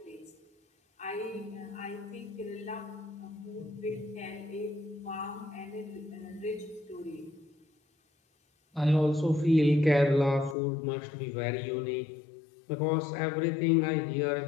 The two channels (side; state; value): right; drops out; at 10.6 s